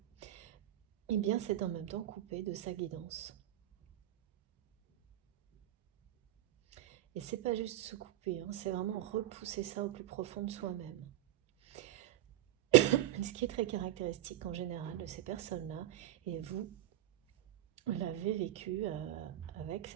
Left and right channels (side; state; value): left; quieter; 13.6 dB